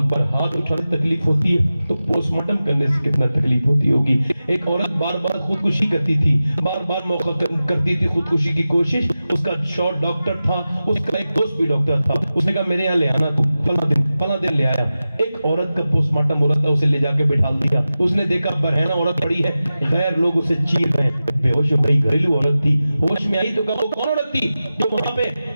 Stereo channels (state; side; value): inverted; both; correlation -0.94